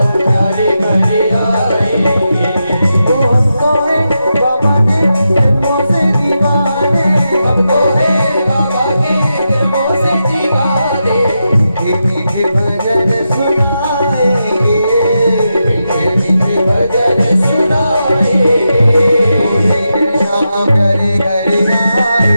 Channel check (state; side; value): inverted; both; correlation -0.87